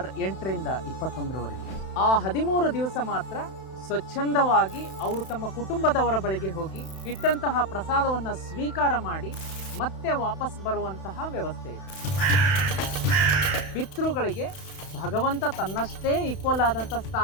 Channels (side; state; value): right; late; 31 ms